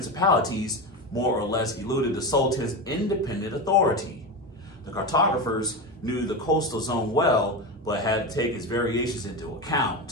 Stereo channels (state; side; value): normal; both; correlation 0.19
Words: more or less eluded the Sultan's independent authority. The cartographers knew the coastal zone well, but had to take its variations into